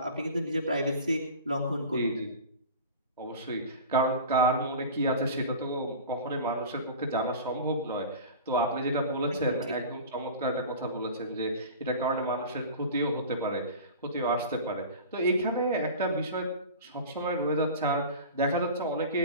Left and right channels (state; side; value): inverted; both; correlation -0.35